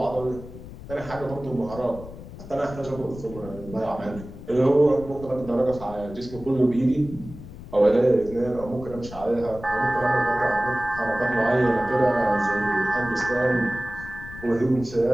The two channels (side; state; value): left; noise; rumble, 14 dB below the sound